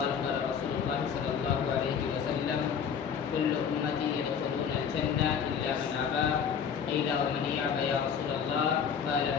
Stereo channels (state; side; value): quieter; right; 7.2 dB